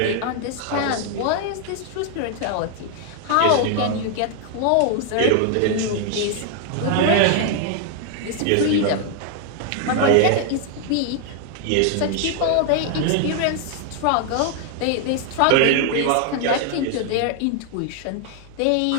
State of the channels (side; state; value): both; different; correlation 0.00